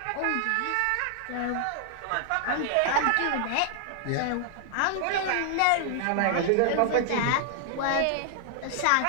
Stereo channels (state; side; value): different; both; correlation 0.00